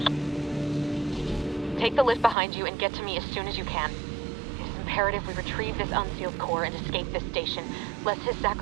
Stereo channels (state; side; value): drops out; left; at 2.4 s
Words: Take the lift behind you and get to me as soon as you can. It is imperative we retrieve this unsealed core and escape this station, lest his